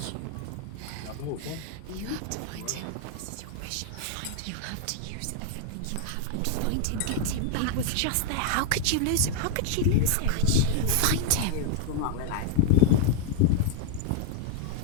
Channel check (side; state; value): both; different; correlation 0.00